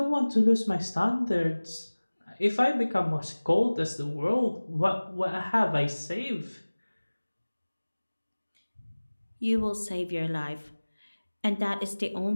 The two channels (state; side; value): inverted; both; correlation -1.00